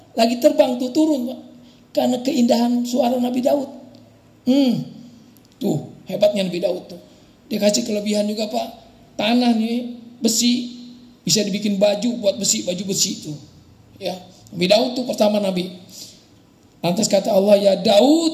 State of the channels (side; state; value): both; identical; correlation 1.00